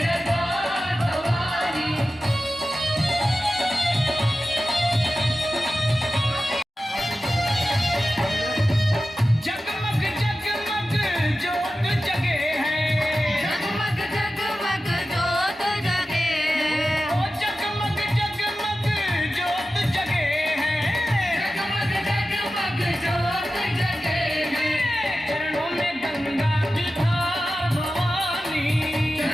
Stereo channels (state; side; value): normal; both; correlation 0.94